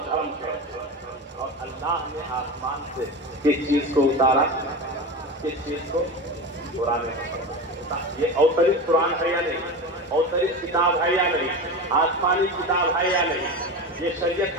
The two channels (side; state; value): both; normal; correlation 0.25